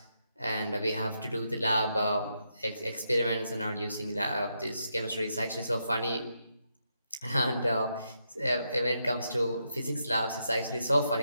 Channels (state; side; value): inverted; both; correlation -0.81